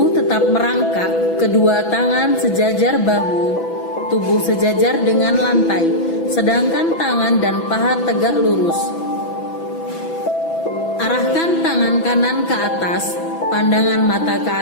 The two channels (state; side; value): late; right; 6.0 ms